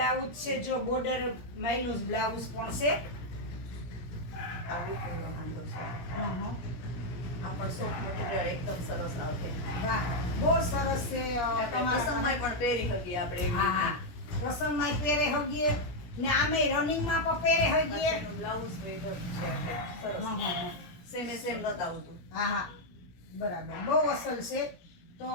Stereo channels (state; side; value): late; right; 17 ms